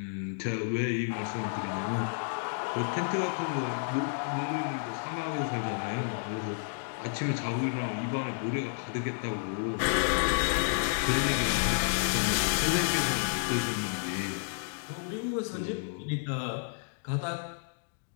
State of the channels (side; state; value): right; silent; digital silence